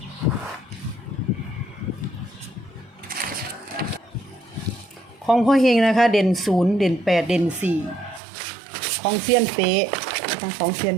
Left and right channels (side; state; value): left; drops out; at 8.2 s